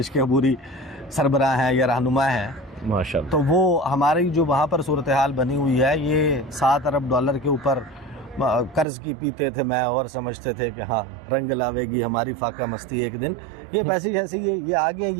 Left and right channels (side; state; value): left; drops out; at 8.8 s